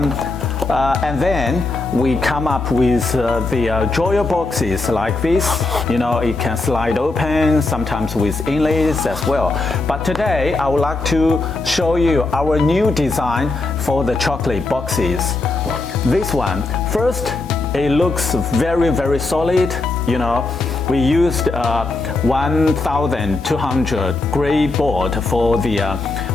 then we come up with the drawer boxes like this. You know, it can slide open, sometimes with inlays as well. But today I would like to show you our new design for the chocolate boxes. This one, first, it looks very solid. You know, we used 1,200 gray board for the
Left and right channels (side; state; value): right; quieter; 3.3 dB